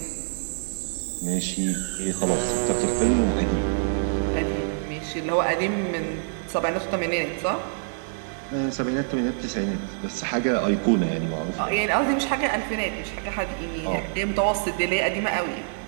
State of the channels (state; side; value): silent; left; 61 dB below the other